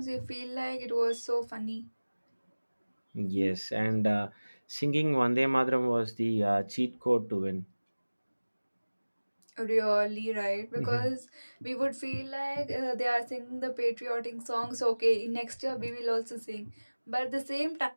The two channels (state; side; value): inverted; both; correlation -1.00